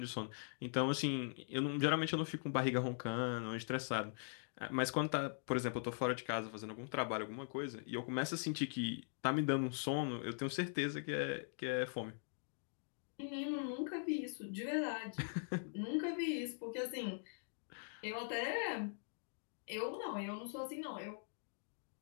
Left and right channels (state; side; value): silent; right; digital silence